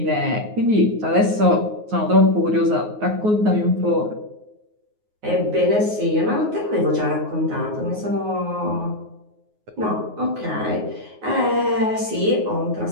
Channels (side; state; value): left; late; 9.5 ms